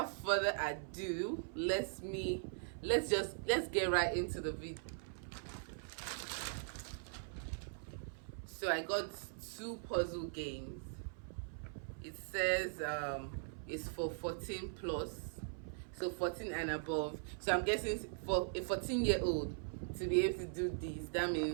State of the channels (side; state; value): left; silent; 51 dB below the other